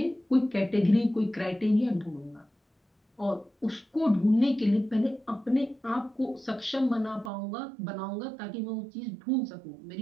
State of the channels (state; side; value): drops out; left; at 7.3 s